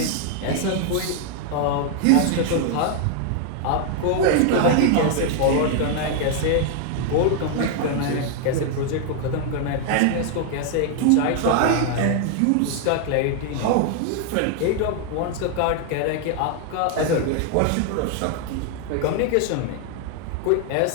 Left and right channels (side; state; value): both; different; correlation 0.00